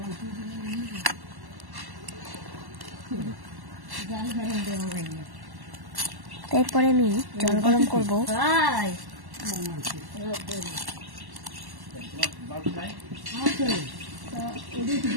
এরপরে আমি জল গরম করবো।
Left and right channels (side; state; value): left; late; 1.1 ms